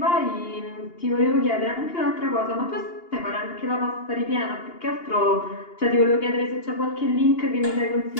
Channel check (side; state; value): right; late; 2.8 ms